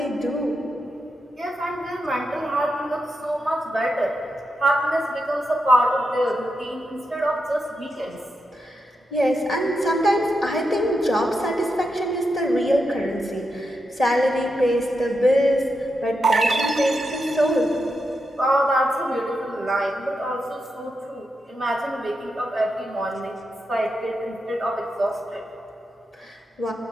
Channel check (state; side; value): normal; both; correlation 0.86